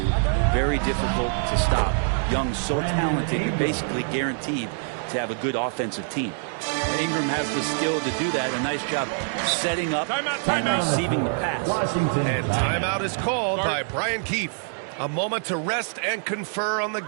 very difficult to stop. Young's so talented, you're basically guaranteed to have a good offensive team. Ingram has the skill to do that. A nice job setting up and receiving the pass. And timeout is called by Brian Keefe. A moment to rest and confer on the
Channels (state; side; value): silent; left; 62 dB below the other